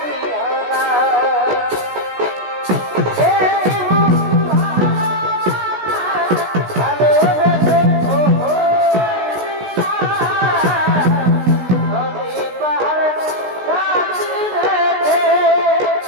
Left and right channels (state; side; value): late; left; 16 ms